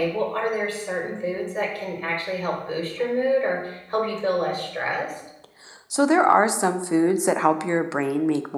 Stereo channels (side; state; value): both; identical; correlation 1.00